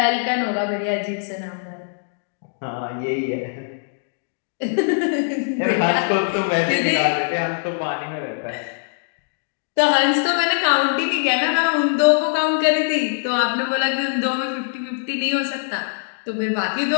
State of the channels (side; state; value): right; silent; digital silence